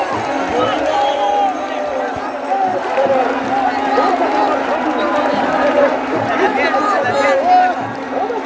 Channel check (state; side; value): identical; both; correlation 1.00